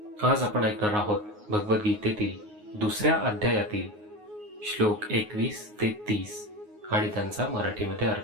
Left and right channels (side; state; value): left; late; 9.5 ms